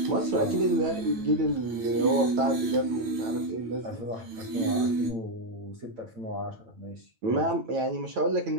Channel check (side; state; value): left; late; 9.2 ms